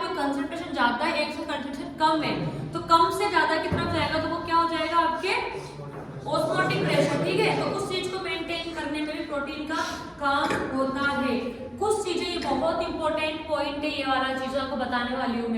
कंसंट्रेशन ज्यादा है, एक से कंसंट्रेशन कम है, तो कम से ज्यादा की तरफ जाएगा, तो वो क्या हो जाएगा? आपके ऑस्मोटिक प्रेशर, ठीक है। तो उस चीज को मेंटेन करने में भी प्रोटीन का काम होता है। कुछ चीजें, ये बहुत इंपॉर्टेंट पॉइंट है, ये वाला चीज आपको बताने वाली हूँ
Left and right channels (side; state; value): both; identical; correlation 1.00